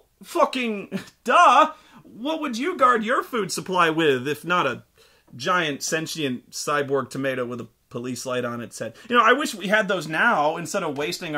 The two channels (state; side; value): identical; both; correlation 1.00